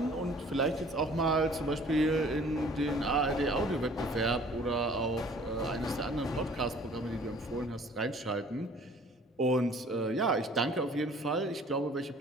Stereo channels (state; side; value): normal; both; correlation 0.53